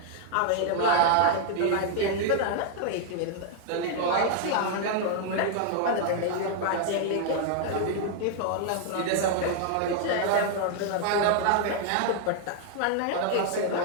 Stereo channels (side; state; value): both; different; correlation 0.00